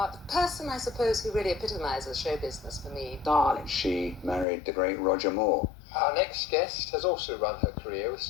the person, I suppose, who really epitomises show business for me. Darling. She married the great Roger Moore. Our next guest has also run her career with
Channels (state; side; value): drops out; right; at 4.5 s